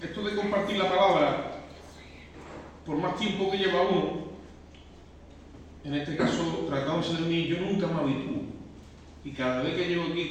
esto de compartir la palabra, por más tiempo que lleva uno, en este caso tratándose de mí, yo nunca me habitúo. Y cada vez que llego aquí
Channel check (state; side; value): identical; both; correlation 1.00